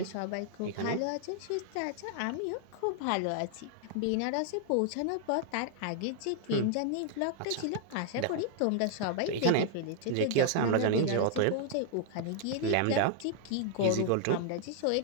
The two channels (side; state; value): both; different; correlation 0.00